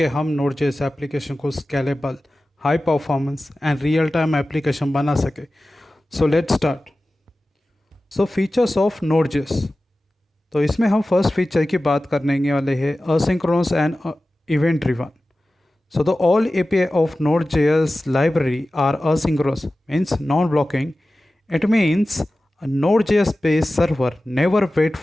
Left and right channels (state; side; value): normal; both; correlation 0.95